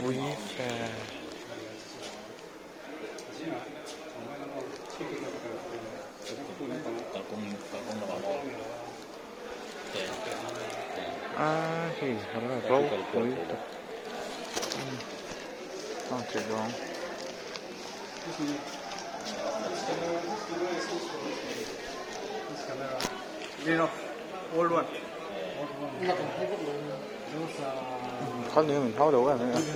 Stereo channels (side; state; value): both; identical; correlation 1.00